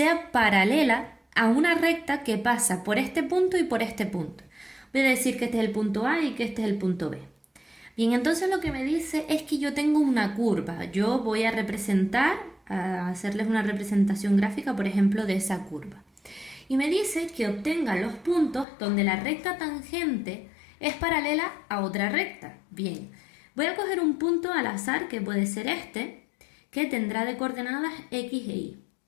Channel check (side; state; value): right; drops out; at 18.7 s